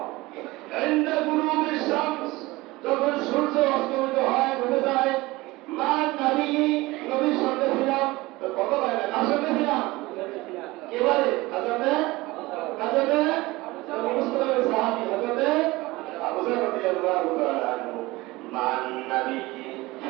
ইনদা গুরুবিশ শামস, যখন সূর্য অস্তমিত হয়, ডুবে যায়, মা নবী, নবীর সঙ্গে ছিলাম। তো কত ভাই না, কার সঙ্গে ছিলাম? এবারে হযরতে মুসলিমের সাহাবী হযরতে আবু যর রাদিয়াল্লাহু তাআলা আনহু। মান নবী,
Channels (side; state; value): left; quieter; 20.6 dB